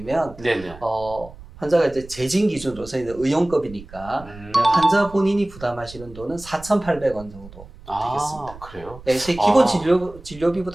네네. 환자가 이제 재진 기준으로서 이제 의용급이니까 환자 본인이 부담하시는 돈은 4,800원 정도 되겠습니다. 그래요? 제 기본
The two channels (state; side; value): noise; right; rumble, 18 dB below the sound